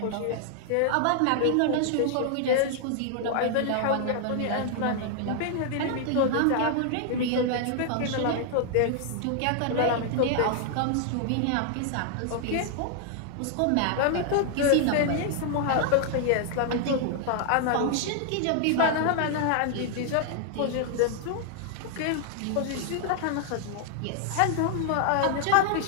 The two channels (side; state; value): both; different; correlation 0.00